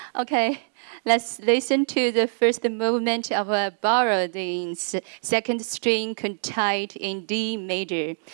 Okay, let's listen to the first movement of Borodin's second string quartet in D major.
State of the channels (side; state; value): left; silent; digital silence